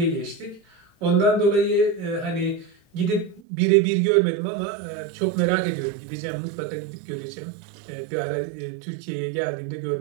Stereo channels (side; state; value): left; drops out; at 3.4 s